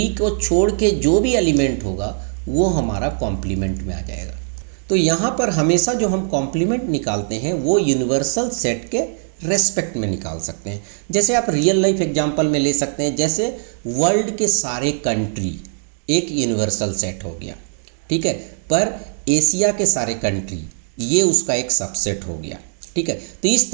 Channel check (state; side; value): silent; left; digital silence